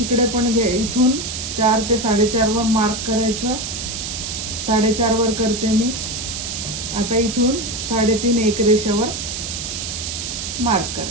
पण घे, इथून 4 ते 4.5 वर मार्क करायचं, 4.5 वर करते मी. आता इथून 3.5 एक रेषावर मार्क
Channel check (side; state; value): right; noise; hiss, 5 dB below the sound